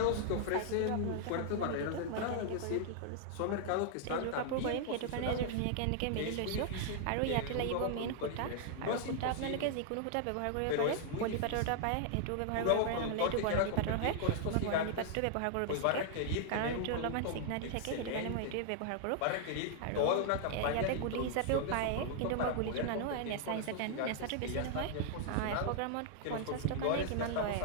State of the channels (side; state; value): both; different; correlation -0.01